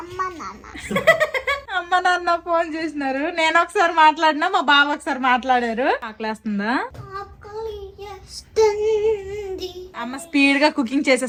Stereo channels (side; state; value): both; identical; correlation 1.00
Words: అమ్మ నాన్న ఫోన్ చేసినారు. నేను ఒకసారి మాట్లాడినా, మా బావ ఒకసారి మాట్లాడారు. ఆకలేస్తుందా? అమ్మ స్పీడ్ గా కుకింగ్